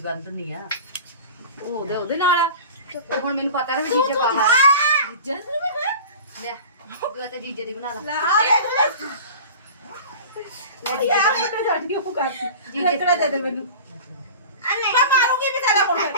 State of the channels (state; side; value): inverted; both; correlation -0.37